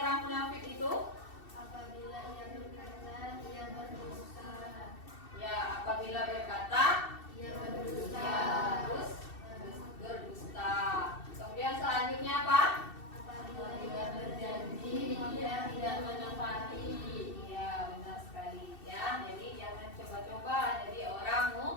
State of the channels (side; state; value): right; late; 2.7 ms